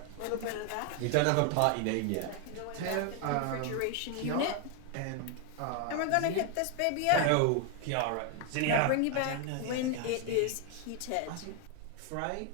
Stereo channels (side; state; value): both; different; correlation 0.01